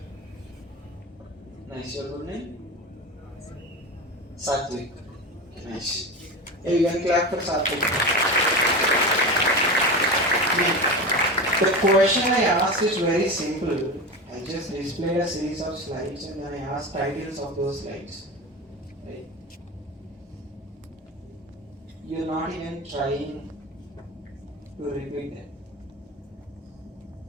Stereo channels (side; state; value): both; normal; correlation 0.25